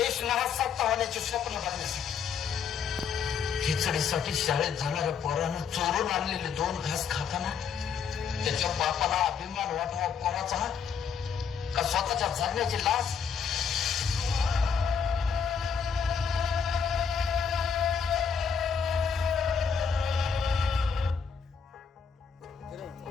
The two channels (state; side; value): quieter; right; 6.5 dB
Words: नाहक होण्याचे स्वप्न बघण्यासाठी खिचडीसाठी शाळेत जाणाऱ्या पोरानं चोरून आणलेले 2 घास खाताना त्याच्या बापाला अभिमान वाटावा पोराचा का स्वतःच्या जगण्याची लाज.